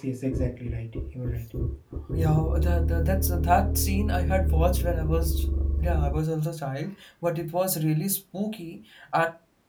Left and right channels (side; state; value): both; identical; correlation 1.00